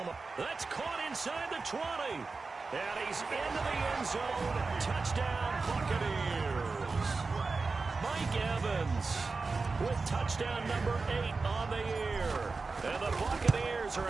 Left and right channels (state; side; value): quieter; left; 4.1 dB